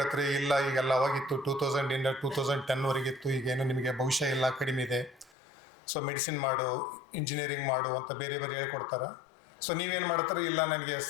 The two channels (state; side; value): drops out; right; at 5.4 s